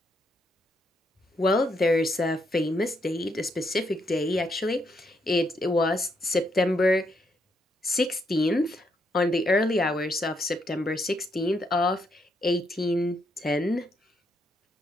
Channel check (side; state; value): both; normal; correlation 0.77